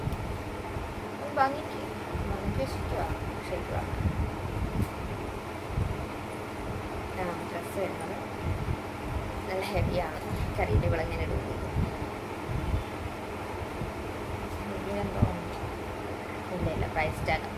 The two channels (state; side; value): identical; both; correlation 1.00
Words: ഭംഗിക്ക് വെച്ചിരിക്കുക. ശരിക്കുക ഡ്രസ്സ് വരുന്നത് നല്ല ഹെവിയാണ്. കറിയുടെ വിളങ്ങനെ ഇടുന്നത് എന്തോ ഇല്ല പ്രൈസ് ടാഗ്.